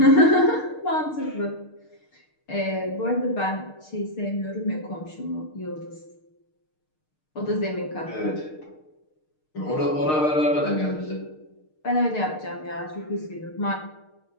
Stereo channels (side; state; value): right; late; 6.5 ms